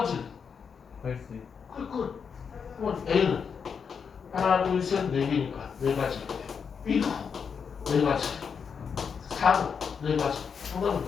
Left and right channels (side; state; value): right; quieter; 6.4 dB